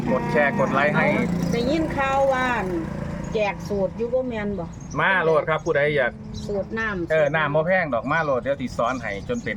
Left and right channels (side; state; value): both; identical; correlation 1.00